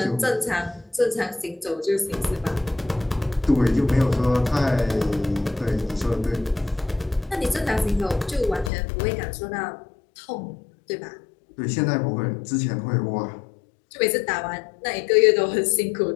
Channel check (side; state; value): right; drops out; at 8.7 s